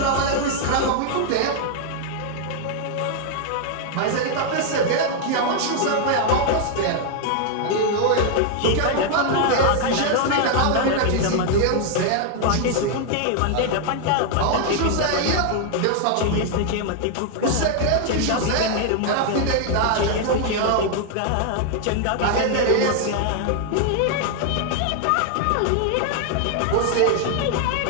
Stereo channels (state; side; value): different; both; correlation 0.00